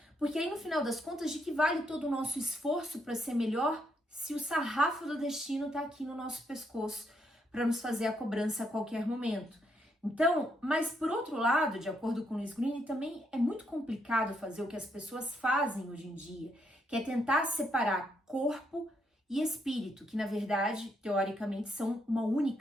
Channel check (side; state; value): both; normal; correlation 0.76